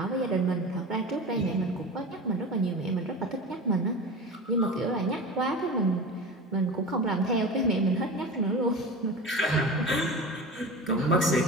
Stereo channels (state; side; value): normal; both; correlation 0.31